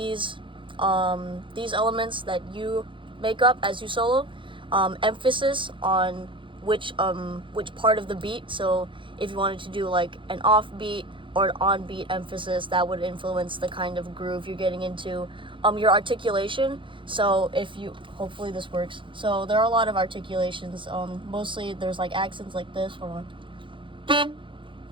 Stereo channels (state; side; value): late; left; 0.24 ms